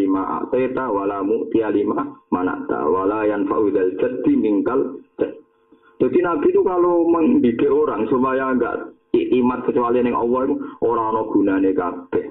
a'taita wa la mu'ti alima mana'ta wa la yanfa'u dzal jaddi minkal jadd. Jadi Nabi itu kalau mendidik orang supaya enggak iman kecuali ning Allah itu ora ana gunane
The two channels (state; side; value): identical; both; correlation 1.00